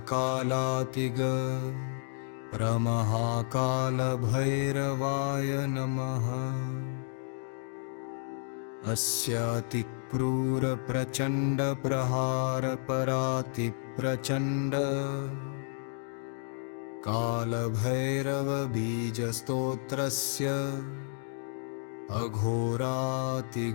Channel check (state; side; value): silent; right; digital silence